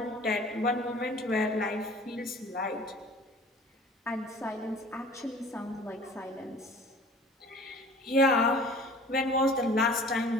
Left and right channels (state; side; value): normal; both; correlation 0.47